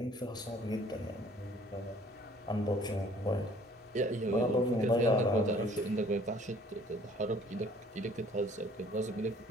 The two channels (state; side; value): normal; both; correlation 0.56